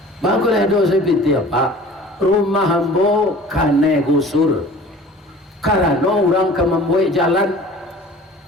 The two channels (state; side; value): normal; both; correlation 0.45